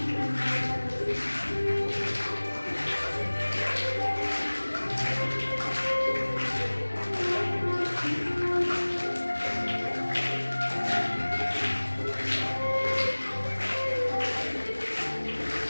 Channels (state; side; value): inverted; both; correlation -1.00